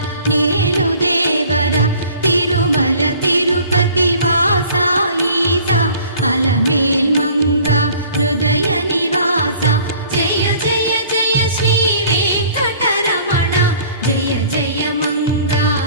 నేలు దేవర తిరుమల తిరుపతి వాస ఈస అలమేల్ మంగ హృదయ నివాస జయ జయ జయ శ్రీ వెంకటరమణ జయ జయ మంగ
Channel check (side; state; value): both; inverted; correlation -0.51